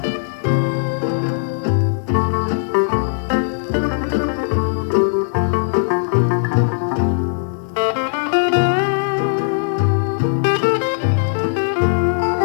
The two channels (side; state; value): right; silent; digital silence